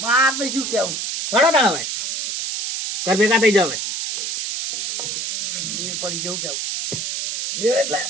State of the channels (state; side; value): noise; right; hiss, 3 dB below the sound